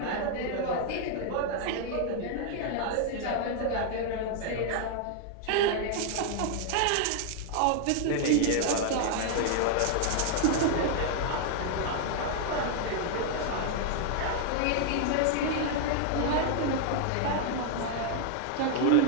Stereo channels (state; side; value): different; both; correlation 0.00